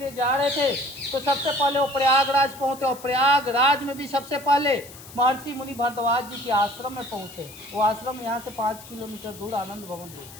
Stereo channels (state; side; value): noise; left; hiss, 18 dB below the sound